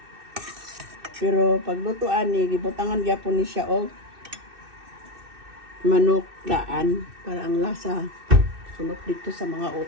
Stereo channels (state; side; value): late; left; 2.6 ms